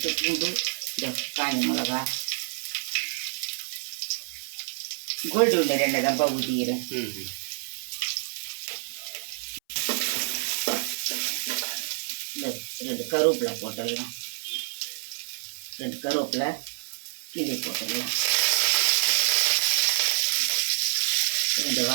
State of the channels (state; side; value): silent; left; 57 dB below the other